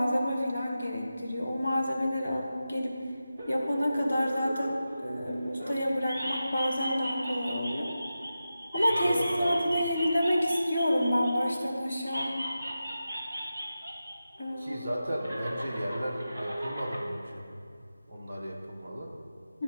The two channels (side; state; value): both; inverted; correlation -0.92